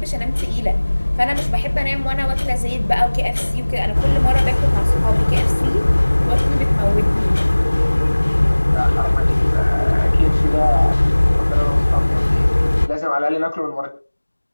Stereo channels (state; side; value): inverted; both; correlation -1.00